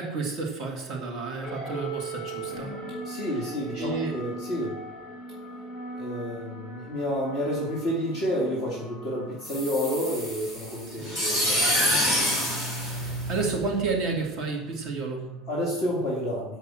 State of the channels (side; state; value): both; normal; correlation 0.36